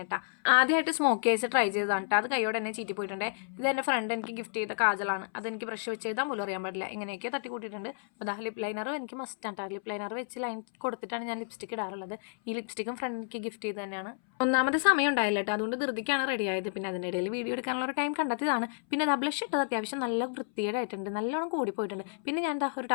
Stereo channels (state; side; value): silent; right; 57 dB below the other